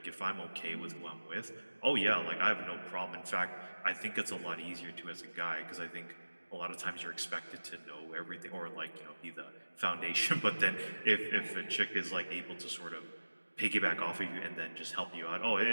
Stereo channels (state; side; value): inverted; both; correlation -1.00